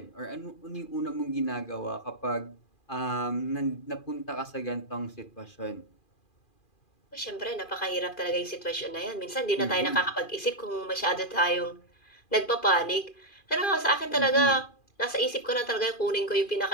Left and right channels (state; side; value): late; right; 2.4 ms